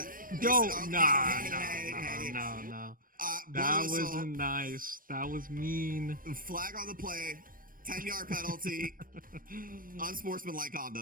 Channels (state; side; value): late; left; 0.41 ms